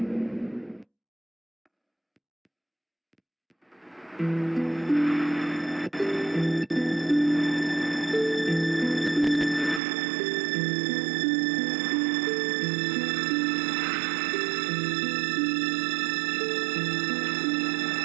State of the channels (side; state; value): left; drops out; at 9.8 s